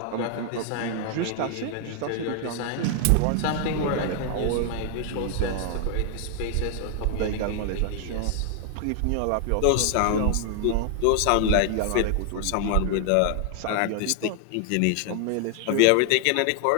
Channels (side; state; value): both; different; correlation 0.00